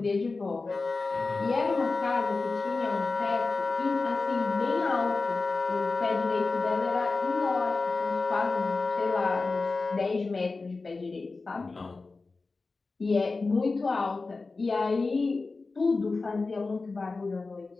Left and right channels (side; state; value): right; quieter; 3.8 dB